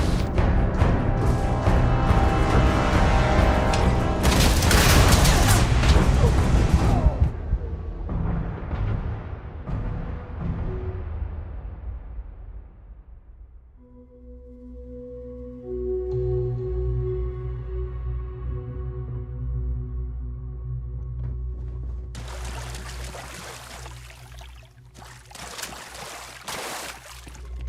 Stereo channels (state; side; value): identical; both; correlation 1.00